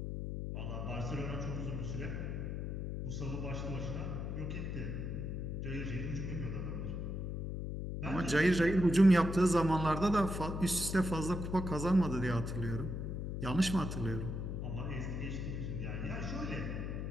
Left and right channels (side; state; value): left; noise; hum, 4 dB below the sound